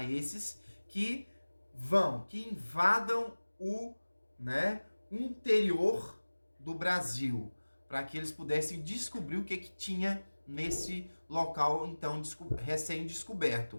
esses que invadam o, né, interior do Brasil, para que eles pudessem descobrir o que tinha nesse local então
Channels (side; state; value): both; inverted; correlation -1.00